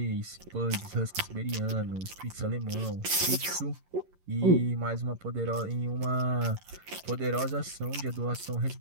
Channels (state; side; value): late; left; 11 ms